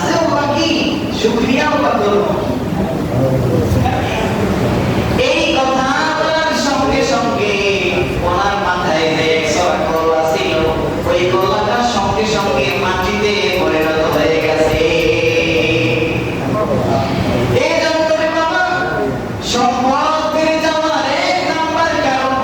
বাকি, শুকরিয়াও বা করবো। এই কথা বলার সঙ্গে সঙ্গে ওনার মাথায় যে 100 কলা ছিল, ওই কলাটার সঙ্গে সঙ্গে মাটিতে পরিণত হয়ে গেছে। এই জন্য বাবা, সম্পদ বেড়ে যাওয়ার 1 নাম্বার কারণ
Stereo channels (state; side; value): identical; both; correlation 1.00